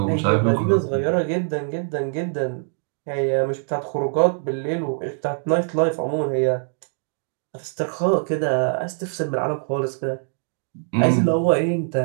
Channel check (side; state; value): left; silent; 62 dB below the other